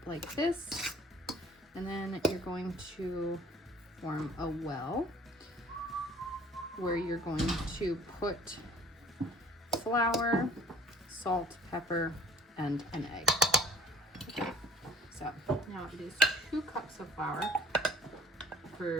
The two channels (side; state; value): both; normal; correlation 0.51